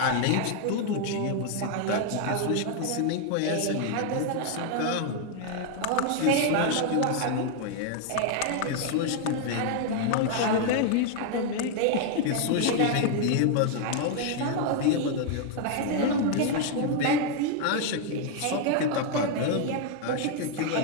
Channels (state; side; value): different; both; correlation 0.00